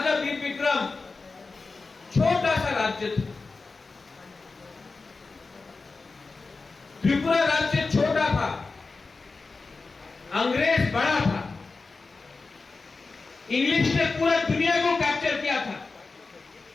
वीर विक्रम छोटा सा राज्य था, त्रिपुरा राज्य छोटा था, अंग्रेज बड़ा था, इंग्लिश ने पूरा दुनिया को कैप्चर किया था,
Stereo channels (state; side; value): quieter; right; 4.0 dB